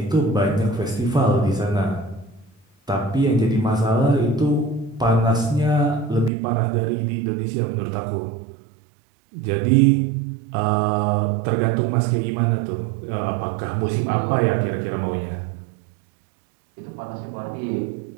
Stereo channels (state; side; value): drops out; left; at 6.3 s